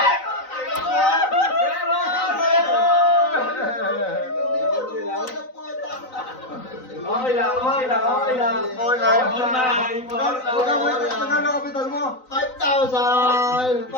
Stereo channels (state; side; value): late; right; 3.9 ms